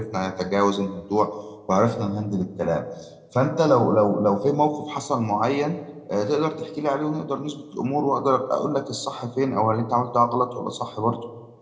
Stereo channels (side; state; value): both; identical; correlation 1.00